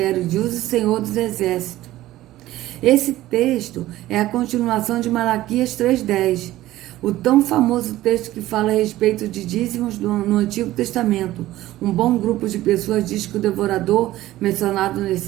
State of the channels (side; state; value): left; quieter; 15.6 dB